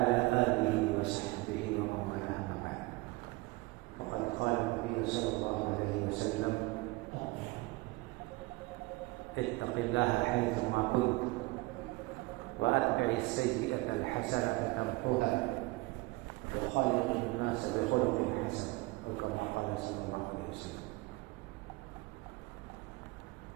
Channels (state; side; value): quieter; left; 22.6 dB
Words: آله وصحبه ومن والاه أما بعد. وقد قال النبي صلى الله عليه وسلم: اتق الله حيثما كنت وأتبع السيئة الحسنة تمحها وخالق الناس بخلق حسن، أو كما قال صلى الله عليه وسلم.